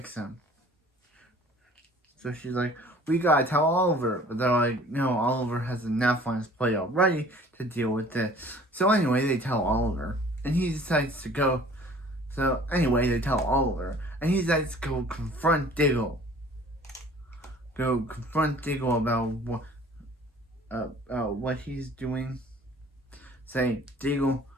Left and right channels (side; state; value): both; normal; correlation 0.50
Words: him. So she's like, we gotta tell Oliver. But they're like, no, Oliver has enough on his plate already to deal with this. So anyway, they tell Oliver. And he decides to go. So anyway, they tell Oliver. And he decides to go confront Diggle. About what he's doing. Say, Diggle,